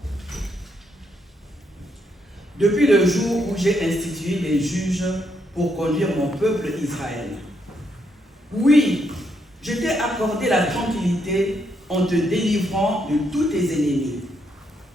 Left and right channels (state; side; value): normal; both; correlation 0.77